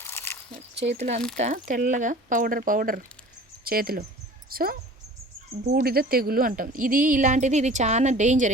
చేతులు అంతా తెల్లగా పౌడర్ చేతిలో. సో బూడిద తెగులు అంటాం. ఇది చాలా డేంజర్.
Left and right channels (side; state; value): both; normal; correlation 0.43